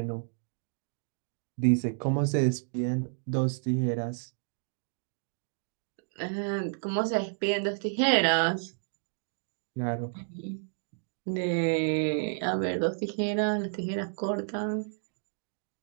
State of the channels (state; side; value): silent; left; digital silence